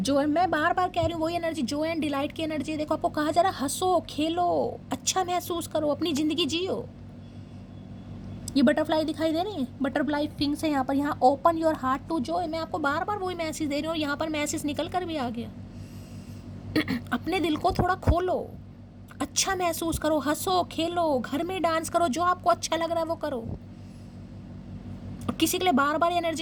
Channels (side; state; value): both; identical; correlation 1.00